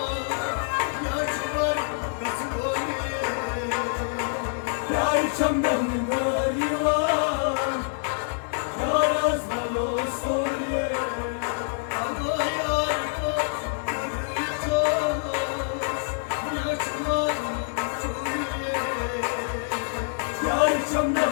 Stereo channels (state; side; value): silent; right; digital silence